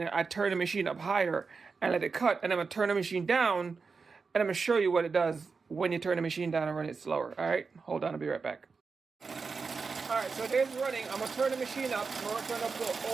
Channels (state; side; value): quieter; left; 4.8 dB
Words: I turn the machine up higher and let it cut, and I'm gonna turn the machine down, and I'm gonna show you what it does when you turn the machine down and run it slower. All right, hold on, I'll be right back. All right, so there's running. I'm gonna turn the machine up. I'm gonna turn up to